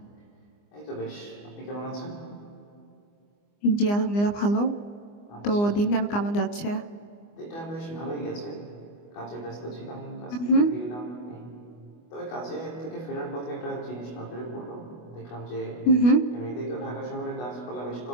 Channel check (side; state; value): right; late; 24 ms